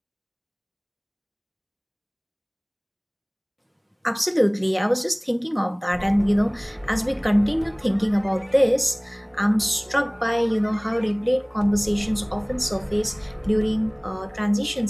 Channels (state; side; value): identical; both; correlation 1.00